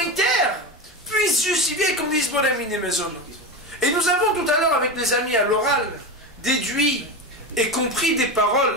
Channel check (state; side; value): normal; both; correlation 0.20